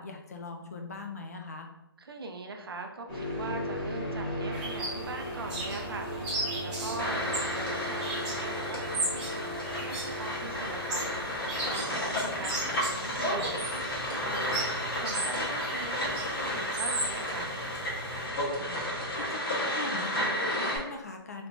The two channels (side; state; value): both; normal; correlation -0.02